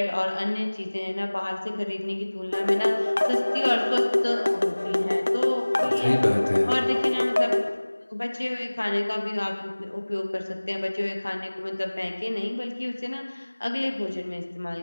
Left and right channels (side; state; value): both; inverted; correlation -1.00